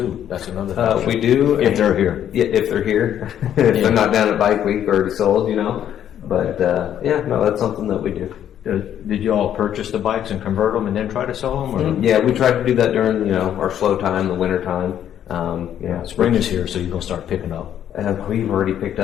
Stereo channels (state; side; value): quieter; right; 10.2 dB